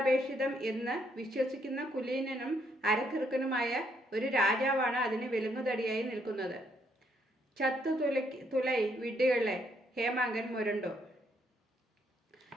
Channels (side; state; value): both; normal; correlation 0.72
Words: എന്ന് വിശ്വസിക്കുന്ന കുലീനനും അരക്കിറുക്കനുമായ ഒരു രാജാവാണ് അതിന് വിലങ്ങുതടിയായി നിൽക്കുന്നത്. തുലൈ വിഡ്ഢികളെ, ഹേമാങ്കൻ മുരണ്ടു.